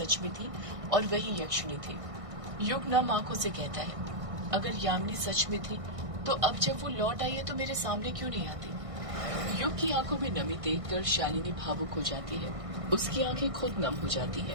में थी और वही यक्षिणी थी। युग नम आंखों से कहता है, अगर यामिनी सच में थी तो अब जब वो लौट आई है तो मेरे सामने क्यों नहीं आती? युग की आंखों में नमी देखकर शालिनी भावुक हो जाती है। उसकी आंखें खुद नम हो जाती है।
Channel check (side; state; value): left; late; 1.6 ms